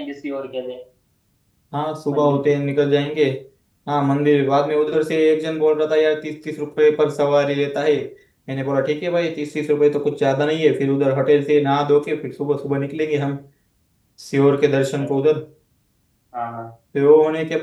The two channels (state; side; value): identical; both; correlation 1.00